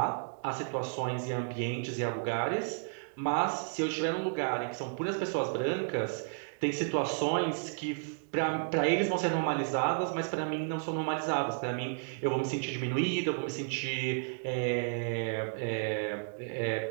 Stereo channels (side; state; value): left; silent; digital silence